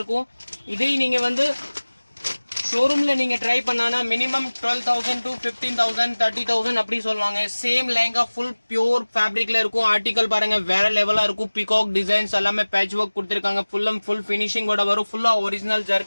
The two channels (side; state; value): both; inverted; correlation -1.00